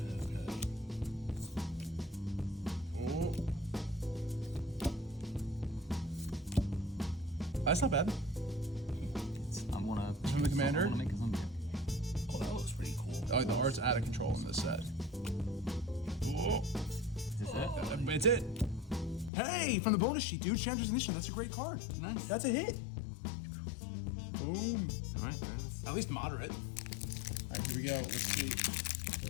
That's not bad. I wanna. From the commander? I wanna make a zombie. Oh, that looks pretty cool. Oh, the art's out of control in this set. Is this it? It's it. Hey, from the bonus sheet, dude. Chandra's Initiative. That's a great card. Nice. That's a hit. Boom. Alright, nice. At least moderate. All right, here we go. Let's see.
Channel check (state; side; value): drops out; right; at 19.3 s